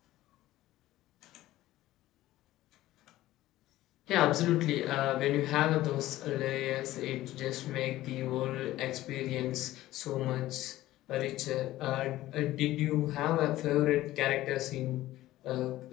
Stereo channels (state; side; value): quieter; right; 15.6 dB